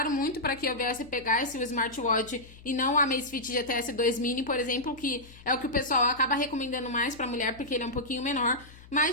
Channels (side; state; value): left; noise; hum, 21 dB below the sound